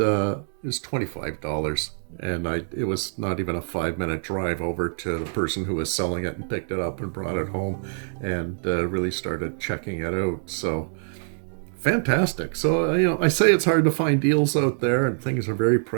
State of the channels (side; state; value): left; silent; digital silence